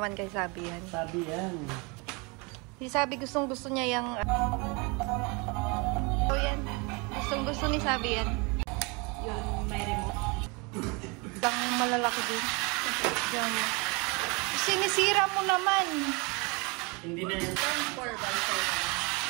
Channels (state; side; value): quieter; left; 29.3 dB